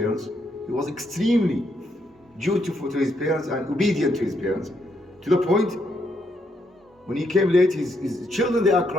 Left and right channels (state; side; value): normal; both; correlation 0.77